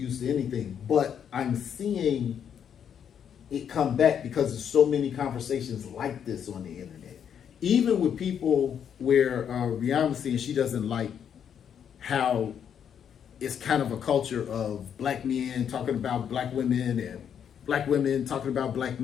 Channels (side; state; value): right; quieter; 8.4 dB